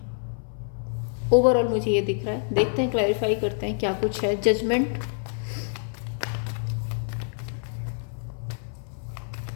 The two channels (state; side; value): silent; right; 59 dB below the other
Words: ओवरऑल मुझे ये दिख रहा है। देखते हैं, क्लैरिफाई करते हैं क्या कुछ है। Judgement,